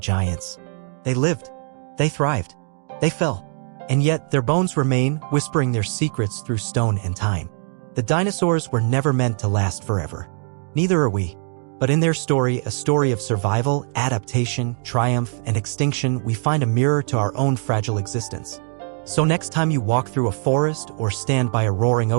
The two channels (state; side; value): silent; left; 56 dB below the other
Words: They lived, they thrived, they fell, and yet their bones remain, whispering their secrets through stone and time. The dinosaurs were never meant to last forever. Neither are we. But in their story, a story of survival, adaptation, triumph, and extinction, we find a mirror to our own fragile existence. So next time you walk through a forest, or stand by a roaring